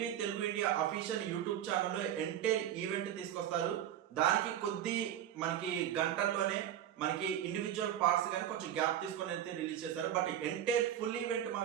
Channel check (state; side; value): quieter; left; 10.7 dB